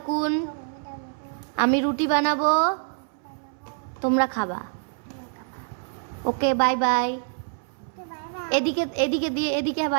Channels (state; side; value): silent; left; 61 dB below the other